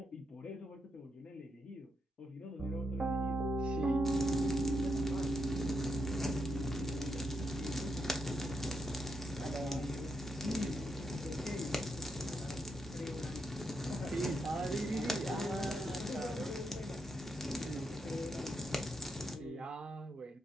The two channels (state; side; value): normal; both; correlation 0.82